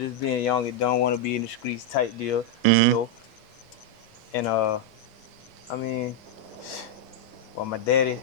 being young and don't want to be in the streets type deal, you know. And I mean, well, my daddy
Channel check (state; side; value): normal; both; correlation -0.01